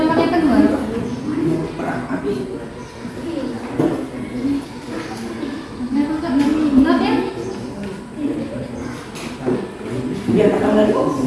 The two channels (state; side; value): identical; both; correlation 1.00